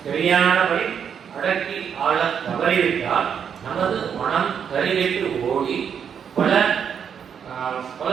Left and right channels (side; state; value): left; quieter; 7.7 dB